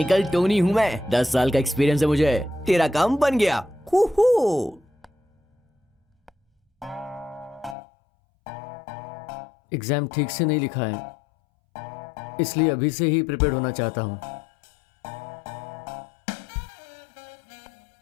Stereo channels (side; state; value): right; drops out; at 7.8 s